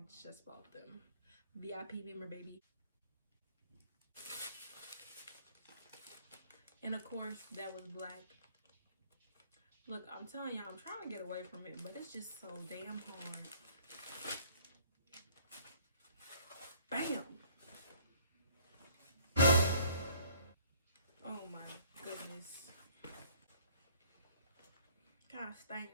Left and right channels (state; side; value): inverted; both; correlation -0.57